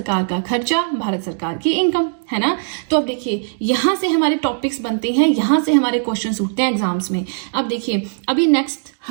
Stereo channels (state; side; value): silent; left; digital silence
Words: का खर्चा, भारत सरकार की इनकम, है ना। तो अब देखिए यहां से हमारे टॉपिक्स बनते हैं, यहां से हमारे क्वेश्चंस उठते हैं एग्जाम्स में। अब देखिए अभी नेक्स्ट